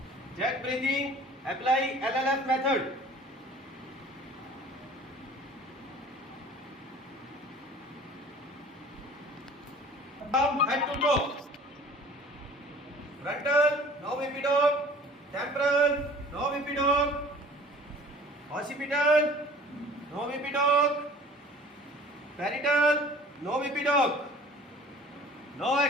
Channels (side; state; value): both; normal; correlation 0.47